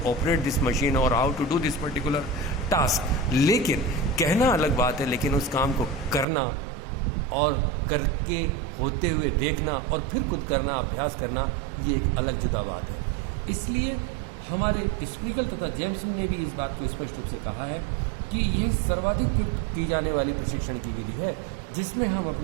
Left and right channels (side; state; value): left; drops out; at 6.2 s